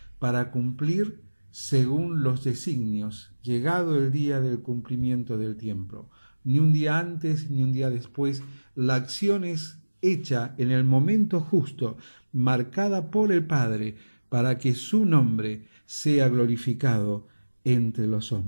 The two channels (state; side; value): inverted; both; correlation -1.00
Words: para cumplir según los designios, llegado el día del cumplimiento del tiempo. Ni un día antes ni un día después, la acción es hecha en el momento justo, marcada por el Padre, para que su nombre sea glorificado entre los